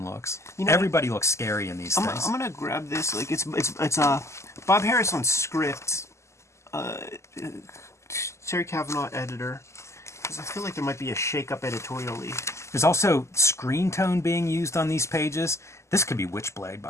looks. You know, everybody looks scary in these things. I'm going to grab this. Like, it's Bob Harris on script. Terry Cavanaugh editor. Because I feel like there might be a shake-up editorially. There's also screen tone being used on these pages. This could be Witchblade,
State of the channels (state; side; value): late; right; 0.13 ms